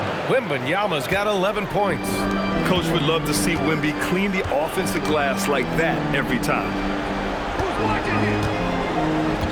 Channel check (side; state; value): both; identical; correlation 1.00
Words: Wembanyama's got 11 points. Coach would love to see Wemby clean the offensive glass like that every time.